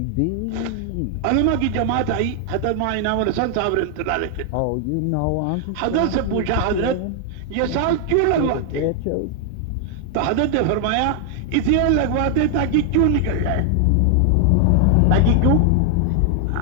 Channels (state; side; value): different; both; correlation 0.00